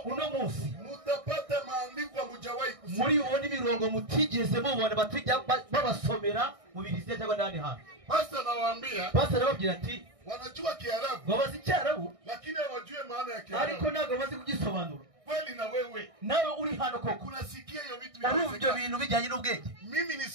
Uno munsi mutapata maandiko mujawahi kusoma. muri ubundi mirongo mutigeze mubona batijya babasomera mu Bibiliya cyangwa ndani hano. Pastor nawaambia. Pastor arababwira ati Wanajua Kiarabu. babazi Cyarabu Lakini hawajui maana ya Kiarabu. ariko ntabwo bazi kugisobanura. Kweli na wewe. Nawe uri hano koko. Unasikia hiyo vitu Urumva bintu bijyanye n'ubwenge. Mimi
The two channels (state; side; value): late; left; 1.6 ms